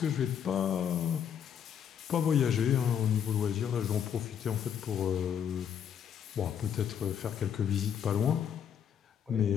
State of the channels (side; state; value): right; quieter; 8.5 dB